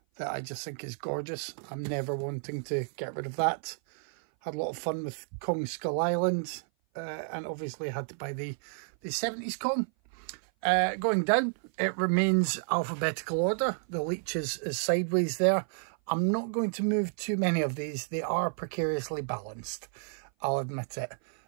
that I just think is gorgeous. I'm never wanting to get rid of that. Had a lot of fun with Kong Skull Island, and obviously had to buy the 70s Kong. Going down, it remains alphabetical order. The Leech is sideways there. I'm not going to move too many of these. They are precariously balanced, I'll admit it.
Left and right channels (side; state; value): left; silent; 56 dB below the other